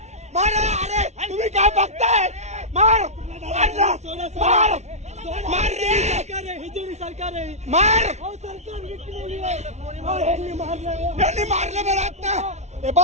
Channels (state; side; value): late; left; 0.32 ms